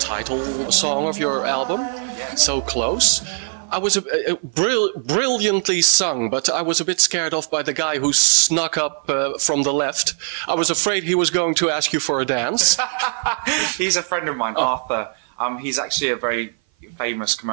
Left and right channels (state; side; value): silent; left; 58 dB below the other